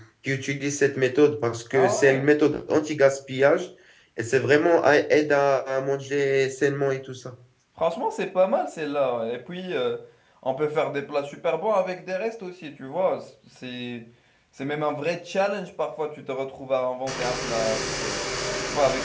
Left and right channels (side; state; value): both; identical; correlation 1.00